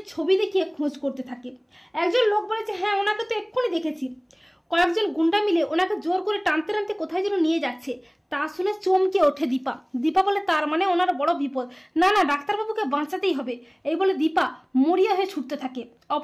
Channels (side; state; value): both; identical; correlation 1.00